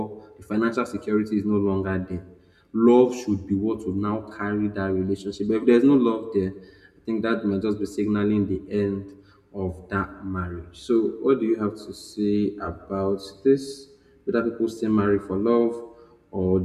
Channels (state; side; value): identical; both; correlation 1.00